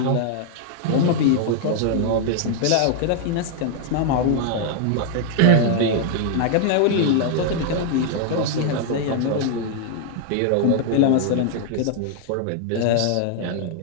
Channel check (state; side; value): different; both; correlation 0.00